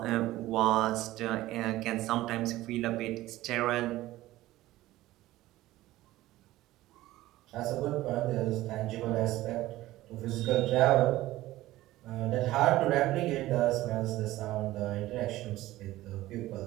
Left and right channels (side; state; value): left; quieter; 16.4 dB